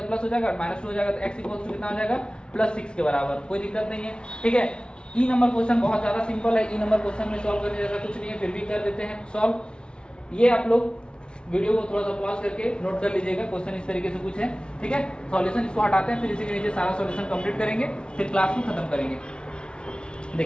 प्लस हो जाएगा, -2 हो जाएगा तो x = कितना हो जाएगा +6 के बराबर। कोई दिक्कत नहीं है, ठीक है। ई नंबर क्वेश्चन बहुत ज्यादा सिंपल है। ई नंबर क्वेश्चन में सॉल्व करने जैसा कुछ नहीं है, फिर भी कर देते हैं सॉल्व। ये आप लोग वीडियो को थोड़ा सा पॉज करके नोट कर लीजिएगा, क्वेश्चन इस तरीके से कुछ है, ठीक है। सॉल्यूशन इसको हटाते हैं, फिर इसी के नीचे सारा सॉल्यूशन कंप्लीट करेंगे, फिर क्लास में खत्म करेंगे।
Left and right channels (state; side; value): late; right; 0.055 ms